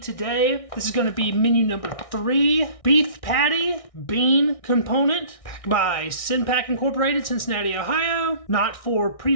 This is going to be menu number 3, beef patty, bean component, packed by Sinpack Incorporated, Cincinnati, Ohio. Not for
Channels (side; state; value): right; late; 1.6 ms